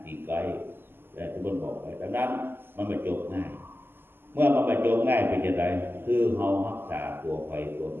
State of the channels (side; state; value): left; late; 0.10 ms